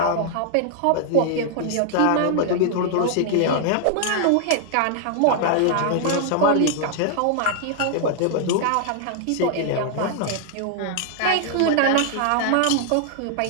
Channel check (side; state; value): both; different; correlation 0.00